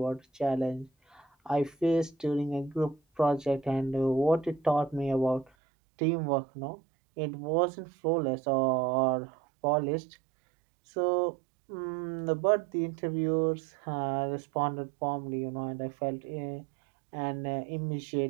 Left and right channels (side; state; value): left; drops out; at 5.5 s